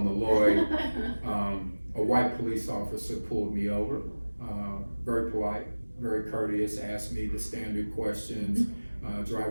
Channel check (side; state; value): both; inverted; correlation -1.00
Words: the Lloyd. A white police officer pulled me over, very polite, very courteous, asked me the standard questions,